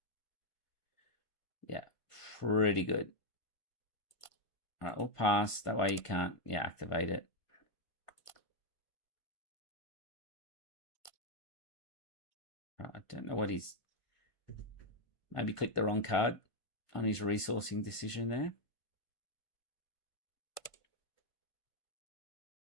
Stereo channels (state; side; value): late; right; 1.5 ms